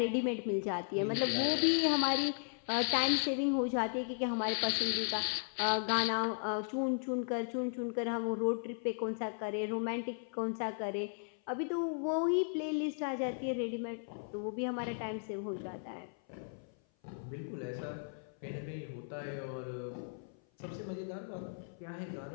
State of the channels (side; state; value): right; silent; 54 dB below the other